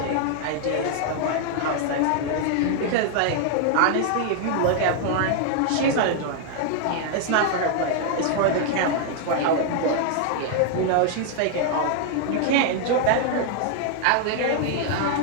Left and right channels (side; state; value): both; different; correlation 0.00